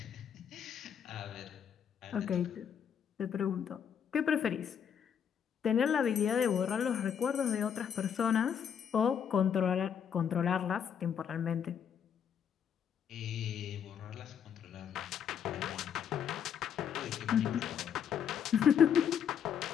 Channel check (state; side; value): quieter; right; 8.0 dB